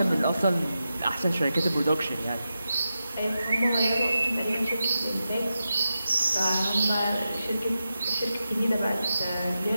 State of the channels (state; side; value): inverted; both; correlation -0.90